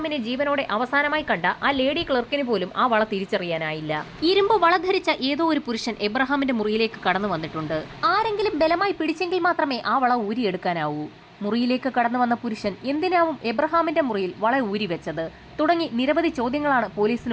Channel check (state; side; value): identical; both; correlation 1.00